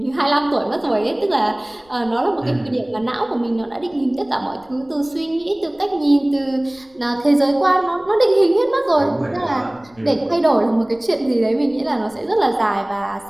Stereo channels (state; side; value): noise; left; rumble, 29 dB below the sound